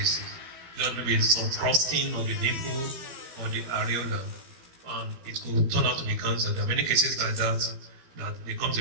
There may be some crusting of the nipple or the areola, and it could turn out to be cancer. There are many cases like that they come to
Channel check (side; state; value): left; late; 12 ms